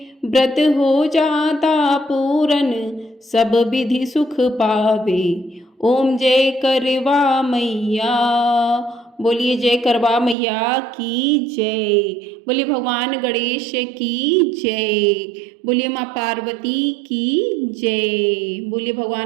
व्रत हो जाता पूरन, सब विधि सुख पावे। ओम जय करवा मैया। बोलिए जय करवा मैया की जय। बोलिए भगवान गणेश की जय। बोलिए माँ पार्वती की जय। बोलिए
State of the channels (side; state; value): left; drops out; at 10.4 s